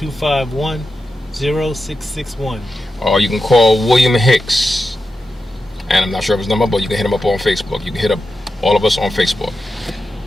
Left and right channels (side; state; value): both; normal; correlation 0.90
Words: Or you can call William Hicks. And I'm not sure of his number, but you can hit him up on Facebook. You can hit up all of us on Facebook.